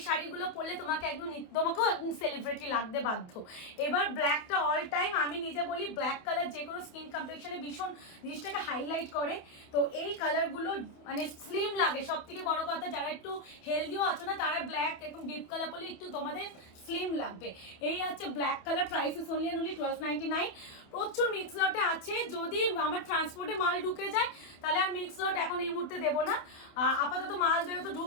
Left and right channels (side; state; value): right; late; 28 ms